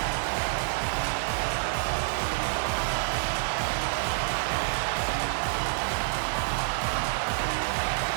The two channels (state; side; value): silent; left; digital silence